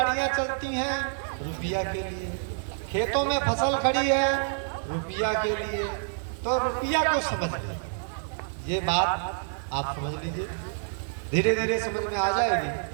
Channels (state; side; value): silent; left; digital silence